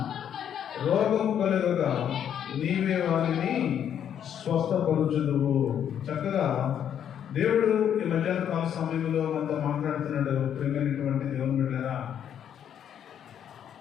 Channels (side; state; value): right; quieter; 9.3 dB